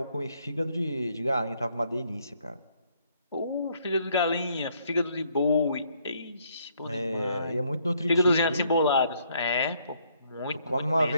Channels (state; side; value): inverted; both; correlation -0.69